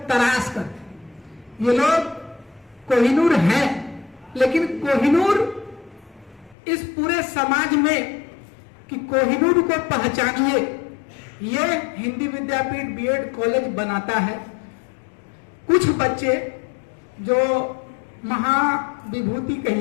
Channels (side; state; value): right; drops out; at 6.6 s